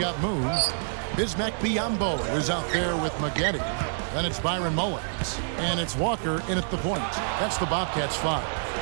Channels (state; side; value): silent; left; digital silence